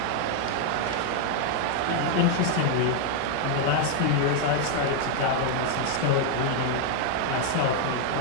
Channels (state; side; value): different; both; correlation 0.00